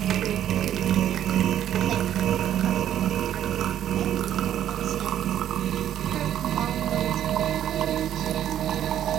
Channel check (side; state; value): left; quieter; 10.9 dB